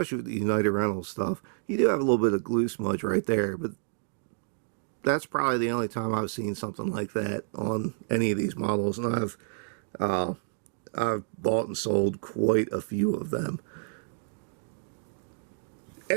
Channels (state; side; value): silent; left; digital silence